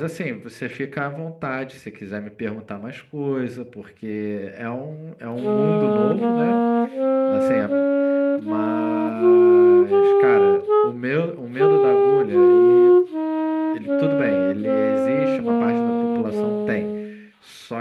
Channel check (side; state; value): both; identical; correlation 1.00